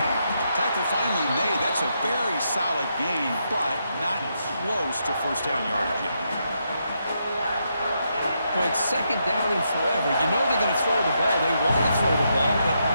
Tackle finally made. That's a very solid gain, but not close to 1st down yardage yet. Well, it's 2nd down and forever. You know they're going to throw the ball. They want to throw the ball, but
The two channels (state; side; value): inverted; both; correlation -0.80